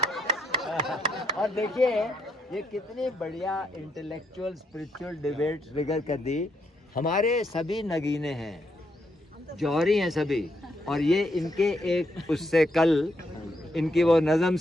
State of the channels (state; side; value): normal; both; correlation 0.77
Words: और देखिए ये कितनी बढ़िया इंटेलेक्चुअल स्पिरिचुअल डिबेट फिगर कर दी। हमारे सभी नगीने हैं, जौहरी हैं सभी, और ये इनके एक उससे कल इनकी वो नज़म